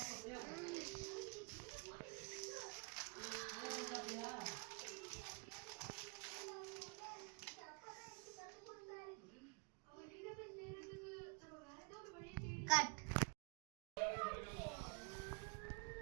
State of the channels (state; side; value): quieter; left; 32.6 dB